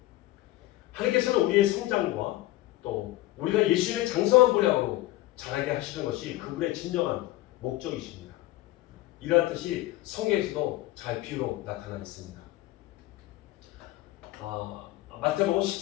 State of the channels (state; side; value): quieter; right; 17.0 dB